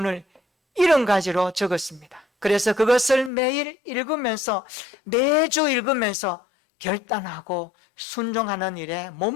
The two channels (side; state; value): right; drops out; at 3.3 s